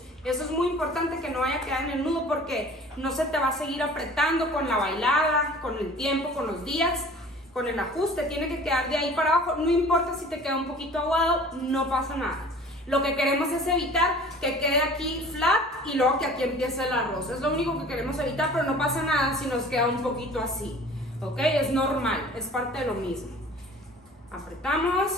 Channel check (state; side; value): normal; both; correlation 0.46